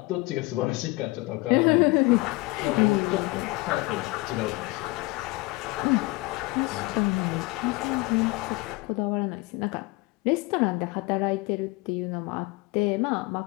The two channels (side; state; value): right; quieter; 23.2 dB